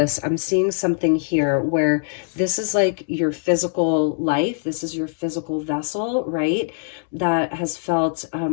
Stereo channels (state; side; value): silent; right; 64 dB below the other